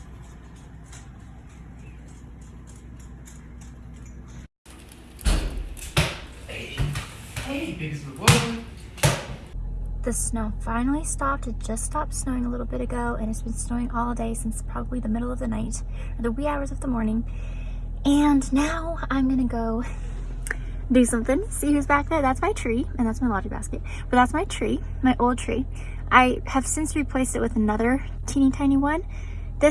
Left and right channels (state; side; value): identical; both; correlation 1.00